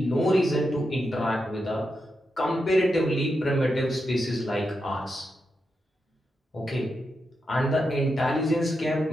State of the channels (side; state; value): both; normal; correlation 0.86